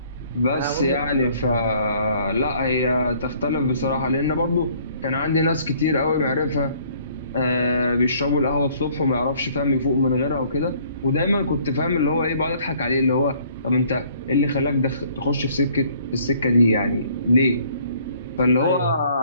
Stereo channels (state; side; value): inverted; both; correlation -0.59